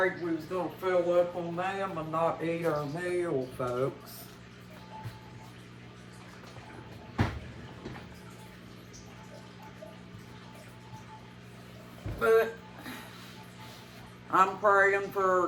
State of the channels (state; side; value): identical; both; correlation 1.00